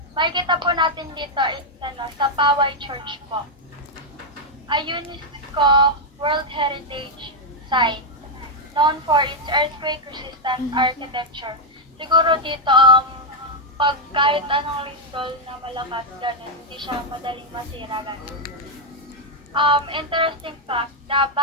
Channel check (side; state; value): both; normal; correlation -0.02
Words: Makikita po natin dito is sa Paway Church po. A UNESCO World Heritage Site known for its earthquake-resistant architecture. Siguro dito, pag kahit anong lindol na malakas, ganun, hindi siya madaling masira, ganun. Interesting fact, the